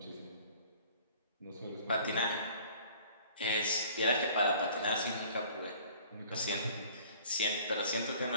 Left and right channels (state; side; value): inverted; both; correlation -0.51